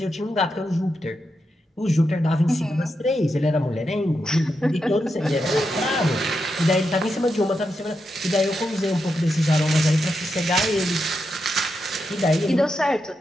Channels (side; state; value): both; normal; correlation 0.85